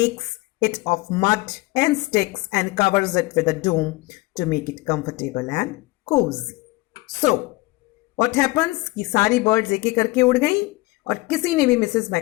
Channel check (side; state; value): right; quieter; 21.9 dB